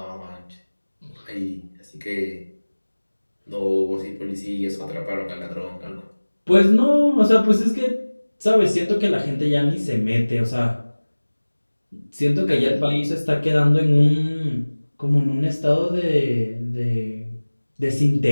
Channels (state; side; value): inverted; both; correlation -1.00